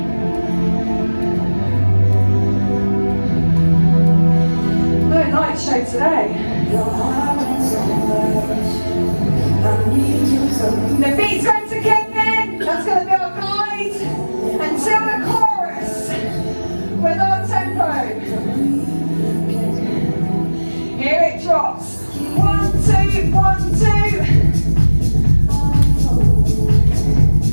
No night show today. The beat's going to kick in. That's going to be our guide until the chorus with our tempo. Here it drops. 1, 2, 1, 2.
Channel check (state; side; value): inverted; both; correlation -1.00